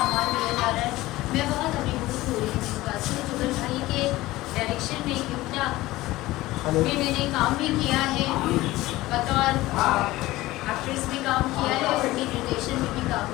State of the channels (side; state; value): right; quieter; 17.9 dB